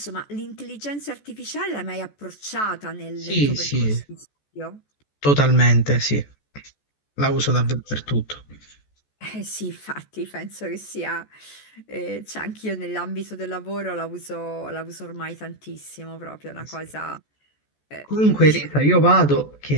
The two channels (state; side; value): late; right; 14 ms